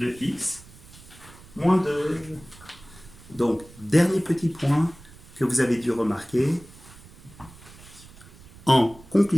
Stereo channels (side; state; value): right; noise; rumble, 21 dB below the sound